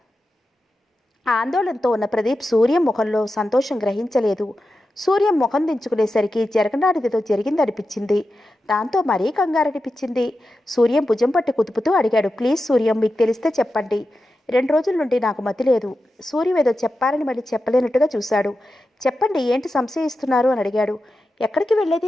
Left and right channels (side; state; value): both; normal; correlation 0.91